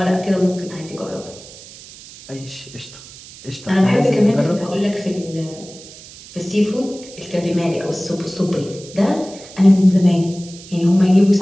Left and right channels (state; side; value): noise; right; hiss, 18 dB below the sound